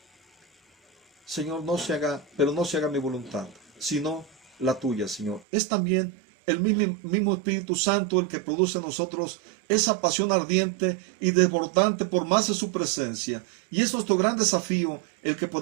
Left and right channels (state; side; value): drops out; left; at 5.5 s